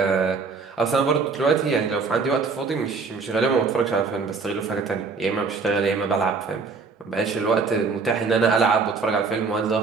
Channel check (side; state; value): left; quieter; 4.7 dB